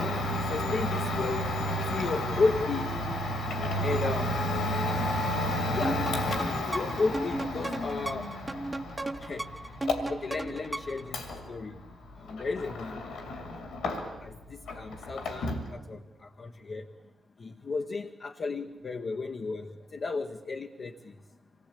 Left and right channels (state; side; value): normal; both; correlation 0.73